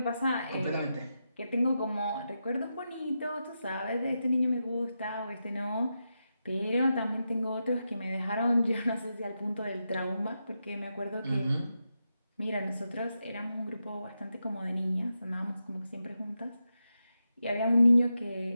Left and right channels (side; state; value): both; inverted; correlation -0.88